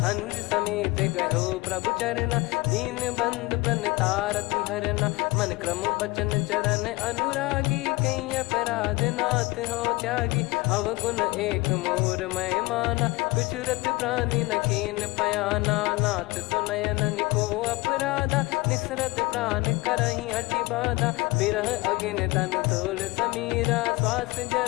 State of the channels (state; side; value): quieter; right; 22.6 dB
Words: अनुज समेत गयो प्रभु चरना, दीन बंद प्रणतारति हरना, मन क्रम बचन चरण अनुरागी, कहीं अपराध नाथ हो त्यागी, अवगुण एक मोर मैं माना, कुछुरत प्राणी न कीन पयाना, नाथ सुनयन निको अपराधा, निसरत प्राण करही हटि बाधा, बिरह अगिन तन तोल समीरा, श्वास